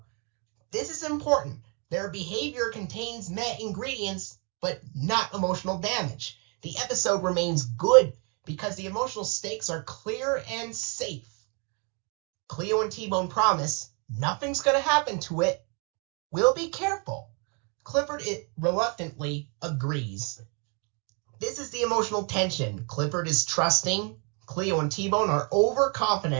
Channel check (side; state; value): left; quieter; 35.2 dB